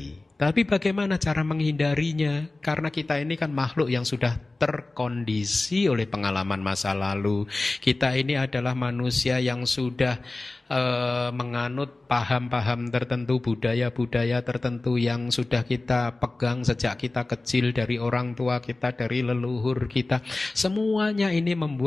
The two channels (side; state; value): right; quieter; 3.1 dB